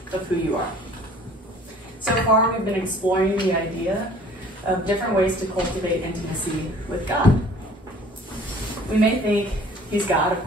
of who you are. So far, we've been exploring the idea of different ways to cultivate intimacy with God. We may think he's God, of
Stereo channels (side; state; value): both; normal; correlation 0.51